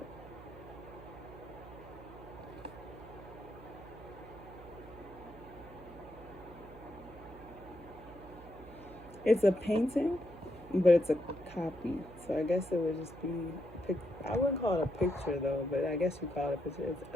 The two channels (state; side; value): noise; right; hum, 17 dB below the sound